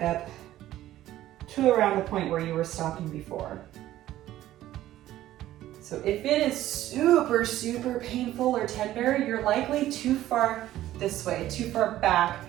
up to around the point where you were stopping before. So if it is super, super painful or tender, you're likely too far this way, too far back.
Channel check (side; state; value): left; quieter; 13.9 dB